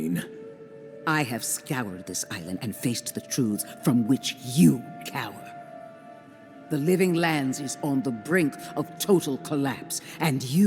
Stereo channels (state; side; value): identical; both; correlation 1.00